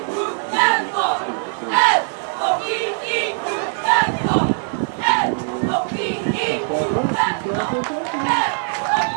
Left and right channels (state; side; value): silent; left; 65 dB below the other